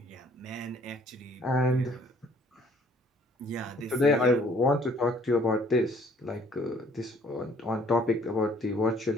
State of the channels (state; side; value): normal; both; correlation 0.60